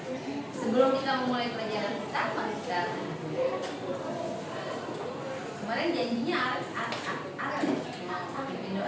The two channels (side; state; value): both; identical; correlation 1.00